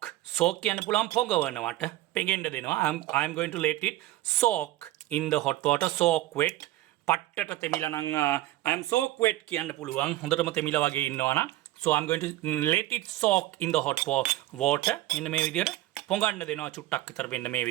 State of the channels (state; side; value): quieter; left; 16.2 dB